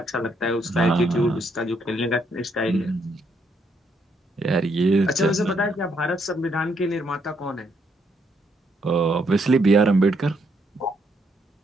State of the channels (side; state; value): both; normal; correlation 0.74